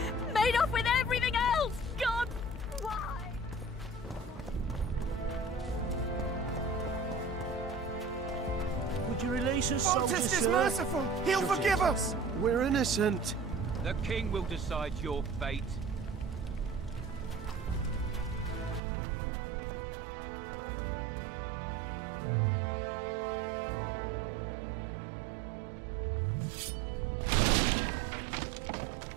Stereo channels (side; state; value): left; drops out; at 18.8 s